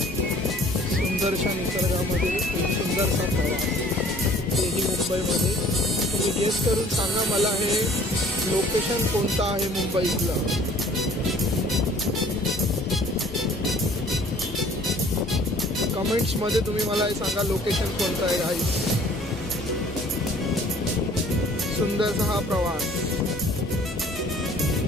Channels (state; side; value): normal; both; correlation 0.54